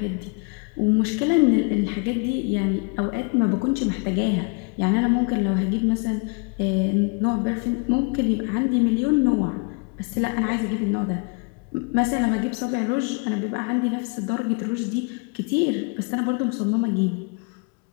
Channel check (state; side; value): quieter; right; 33.3 dB